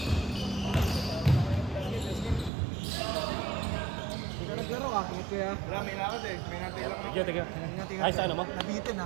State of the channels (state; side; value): drops out; left; at 2.5 s